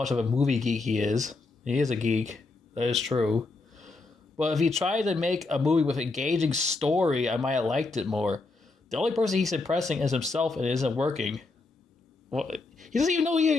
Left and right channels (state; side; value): quieter; right; 3.6 dB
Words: of a movie geek he is. He is a geek. That is true. But if he tried to make a movie with an engaging story, I might have liked it more. The only person he's impressing is himself, and it isn't working. Well, he doesn't even know you